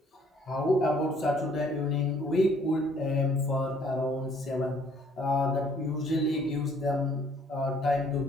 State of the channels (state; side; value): normal; both; correlation 0.61